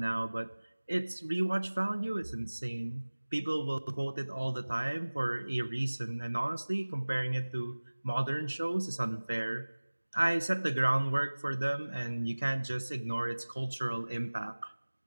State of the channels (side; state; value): both; inverted; correlation -1.00